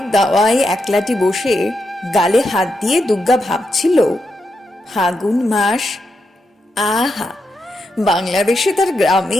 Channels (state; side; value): normal; both; correlation 0.84